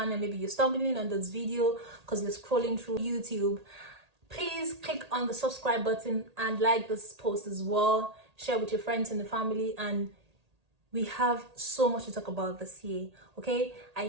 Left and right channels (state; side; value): late; left; 1.8 ms